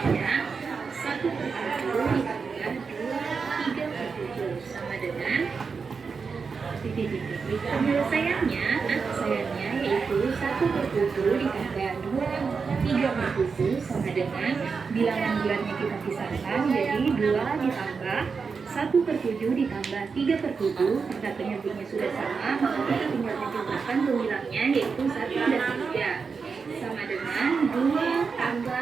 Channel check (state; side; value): quieter; left; 5.2 dB